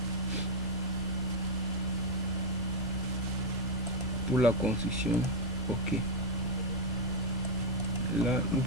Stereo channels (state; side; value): normal; both; correlation 0.03